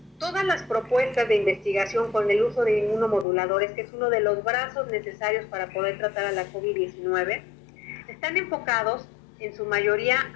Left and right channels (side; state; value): right; drops out; at 3.2 s